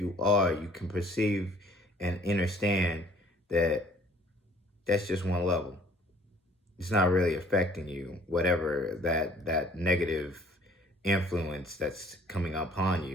are, you can perceive and understand that that's just one level. It's not really affecting you, whatever that negative influence that's coming upon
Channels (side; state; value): both; normal; correlation 0.56